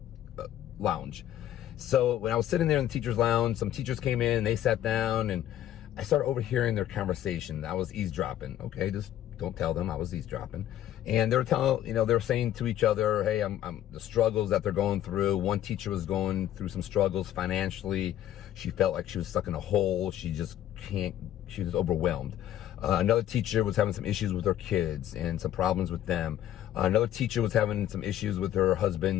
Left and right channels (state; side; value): quieter; right; 12.0 dB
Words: lounge. So when I was sitting there in the teacher's lounge, some teachers came in and they sat down and I started overhearing their conversation. I was eavesdropping. Okay, just don't tell them I was eavesdropping. And they were telling, they were saying to each other, hey, I'm the struggles that they're going through. One teacher was going through some struggles financially. She felt like she was stuck in a hole. She was overwhelmed. Another teacher was having some issues with her kids and some problems with them. Another teacher was having some issues with her